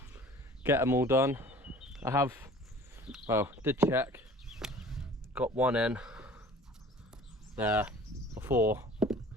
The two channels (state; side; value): normal; both; correlation 0.47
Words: get them all done. I have, well, did check, got one in there before